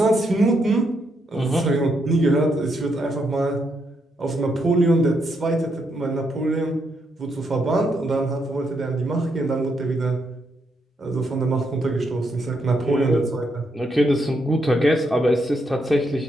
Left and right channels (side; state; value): both; normal; correlation 0.78